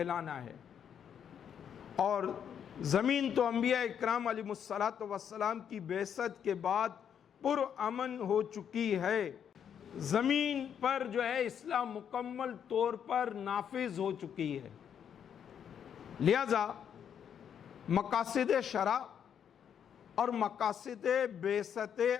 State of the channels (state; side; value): quieter; right; 8.4 dB